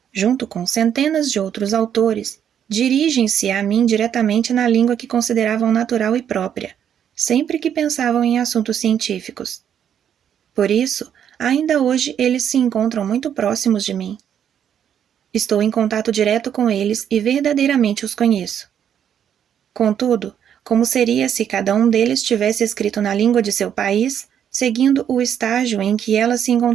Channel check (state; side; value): quieter; left; 9.0 dB